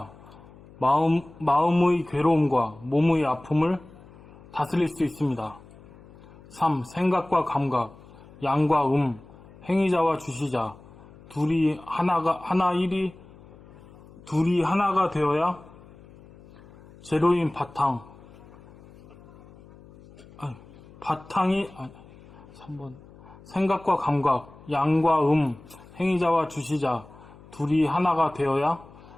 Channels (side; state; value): left; noise; hum, 22 dB below the sound